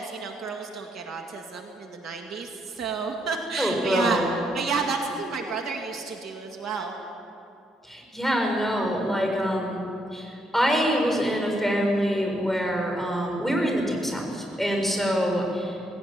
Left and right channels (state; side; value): normal; both; correlation 0.76